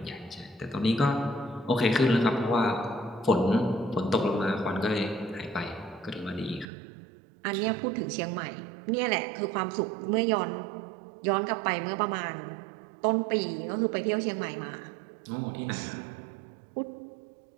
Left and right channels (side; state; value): left; drops out; at 6.7 s